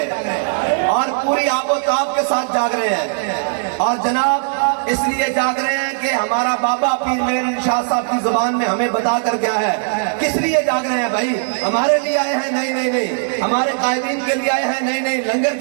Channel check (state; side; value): silent; left; digital silence